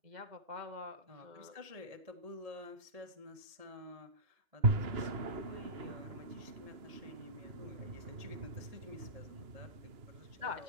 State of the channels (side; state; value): left; late; 1.8 ms